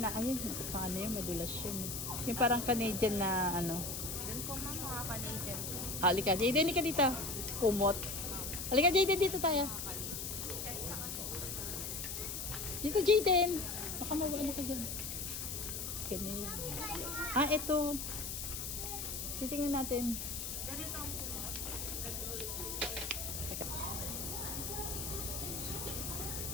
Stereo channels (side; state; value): left; noise; hiss, 4 dB below the sound